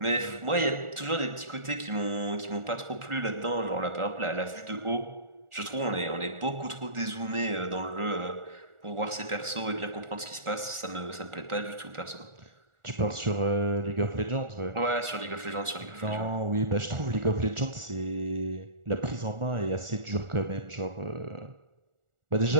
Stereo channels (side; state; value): left; late; 1.4 ms